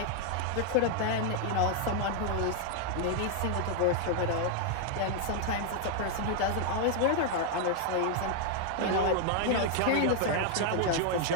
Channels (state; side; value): different; both; correlation 0.00